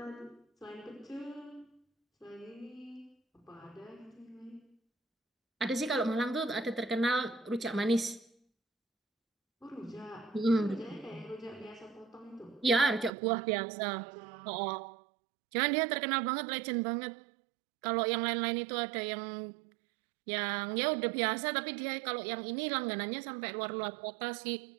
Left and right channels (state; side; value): drops out; left; at 13.1 s